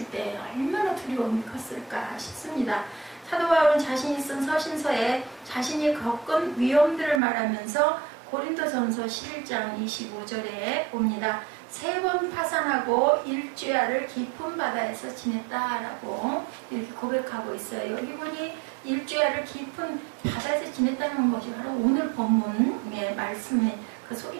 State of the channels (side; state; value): left; drops out; at 7.2 s